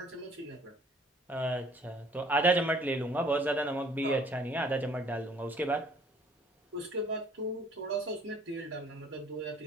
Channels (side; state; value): both; normal; correlation 0.57